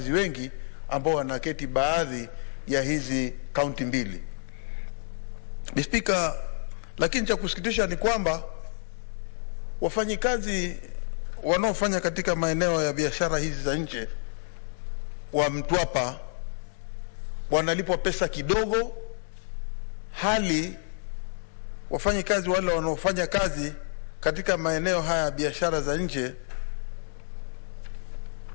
wengi ambao wanaketi baadhi ya hizi kaunti mbili. Speaker, lakini cha kusikitisha ni kwamba wafanyikazi wanaofanya katika maeneo ya biashara hizi za nje wa Mtwapa wanalipwa pesa kidogo, hali wafanyikazi wale wanaofanya kazi katika maeneo haya ya biashara za nje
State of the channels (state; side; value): silent; right; digital silence